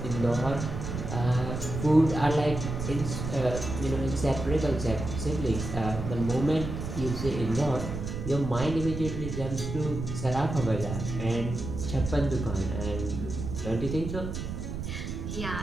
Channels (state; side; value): noise; right; rumble, 5 dB below the sound